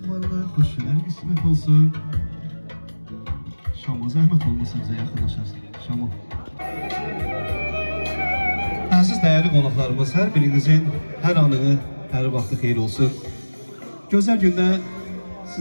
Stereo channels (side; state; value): both; inverted; correlation -1.00